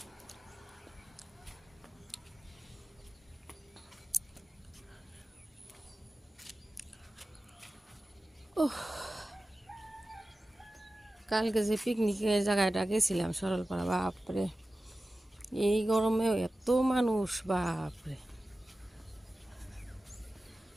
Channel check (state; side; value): normal; both; correlation 0.95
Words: কালকে যে পিকনিকের জায়গাটা গেছিলাম সরলপাড়া, বাপরে এই গরমেও এত মানুষ, বাপরে।